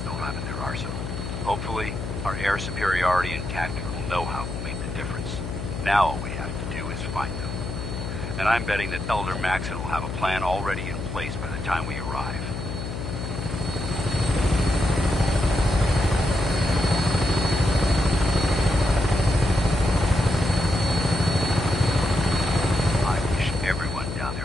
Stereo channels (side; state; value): left; noise; hum, 6 dB below the sound